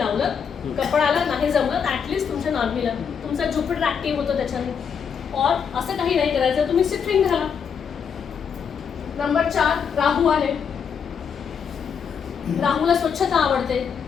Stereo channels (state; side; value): quieter; right; 7.0 dB